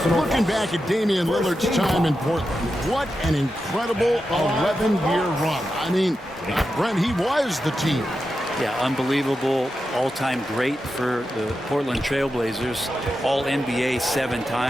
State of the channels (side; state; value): both; normal; correlation 0.89